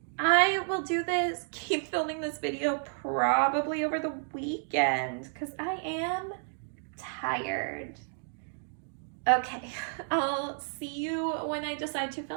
I will do this, keep filming this video probably over the weekend because I am tired. Okay, I'll see you when I decide to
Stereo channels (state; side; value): silent; left; 57 dB below the other